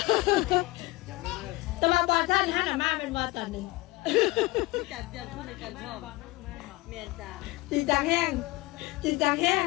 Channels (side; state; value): right; quieter; 21.3 dB